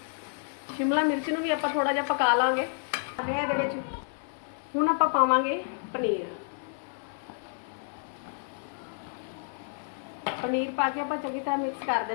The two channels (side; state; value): right; silent; 58 dB below the other